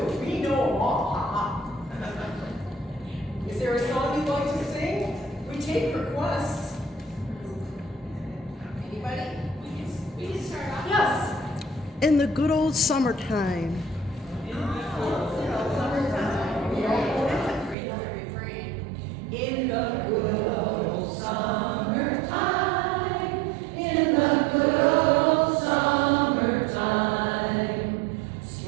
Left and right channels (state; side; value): drops out; left; at 17.8 s